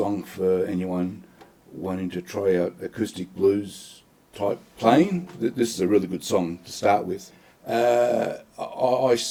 for anyone wanting to try out acoustic blues type playing. This is a really good song to start with. I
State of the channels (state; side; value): identical; both; correlation 1.00